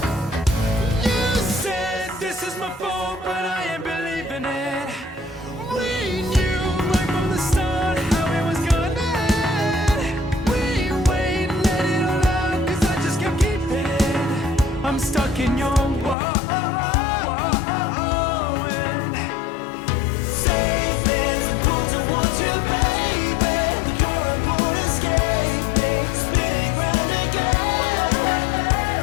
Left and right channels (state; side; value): drops out; right; at 16.2 s